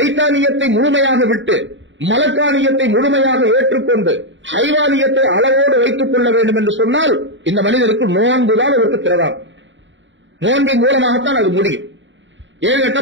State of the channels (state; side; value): late; left; 0.54 ms